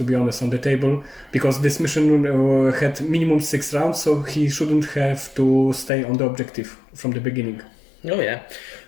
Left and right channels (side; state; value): right; drops out; at 5.9 s